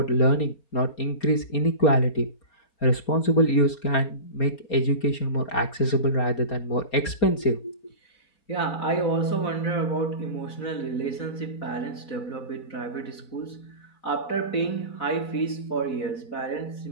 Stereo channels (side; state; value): right; late; 4.3 ms